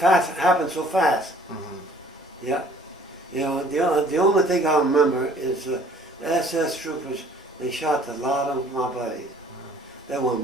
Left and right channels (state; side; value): normal; both; correlation 0.55